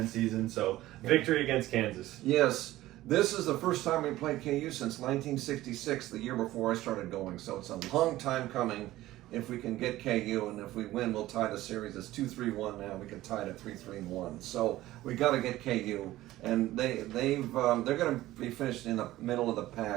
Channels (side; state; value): left; quieter; 16.0 dB